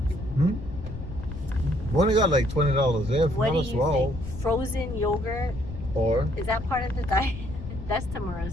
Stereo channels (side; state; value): left; noise; rumble, 10 dB below the sound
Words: We only got like $20 there. What do Not as you well. think? Frozen yogurt, Or is that part of the diet? That's